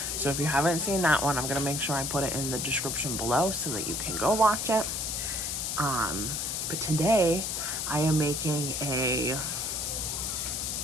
So if you haven't seen that one, I'm going to make sure I put it in the description below so that you can go watch it. But today I am making a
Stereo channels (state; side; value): noise; left; hiss, 2 dB below the sound